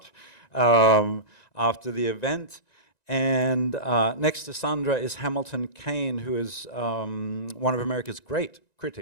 after the event. And next to Sandra is Hamilton Kane, who is one of America's great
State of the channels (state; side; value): late; right; 1.9 ms